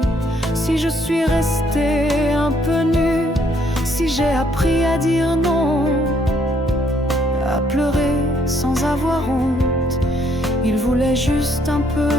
si je suis restée un peu nue, si j'ai appris à dire non, à pleurer sans avoir honte. Il voulait juste un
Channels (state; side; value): normal; both; correlation 0.68